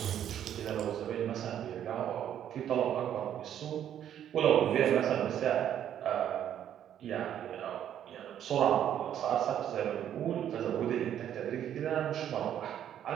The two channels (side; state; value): left; quieter; 10.2 dB